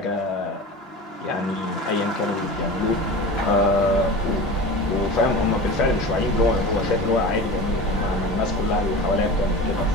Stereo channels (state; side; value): normal; both; correlation 0.32